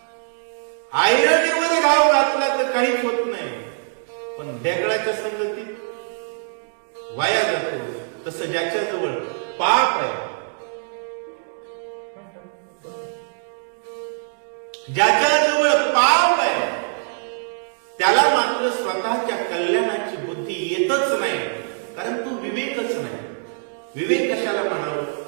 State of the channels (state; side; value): silent; left; digital silence